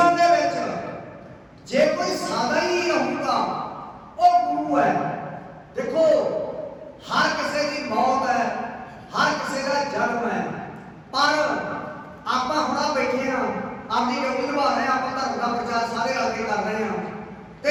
ਦੇ ਵਿੱਚ ਜੇ ਕੋਈ ਸਾਦਾ ਹੀ ਰਹੂਗਾ ਉਹ ਗੁਰੂ ਹੈ ਦੇਖੋ ਹਰ ਕਿਸੇ ਦੀ ਮੌਤ ਹੈ ਹਰ ਕਿਸੇ ਦਾ ਜਨਮ ਹੈ ਪਰ ਆਪਾਂ ਹੁਣ ਬੈਠੇ ਹਾਂ ਆਪਣੀ ਡਿਊਟੀ ਨਿਭਾ ਰਹੇ ਹਾਂ ਆਪਾਂ ਧਰਮ ਦਾ ਪ੍ਰਚਾਰ ਸਾਰੇ ਰਲ ਕੇ ਕਰ ਰਹੇ ਹਾਂ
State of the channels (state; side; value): identical; both; correlation 1.00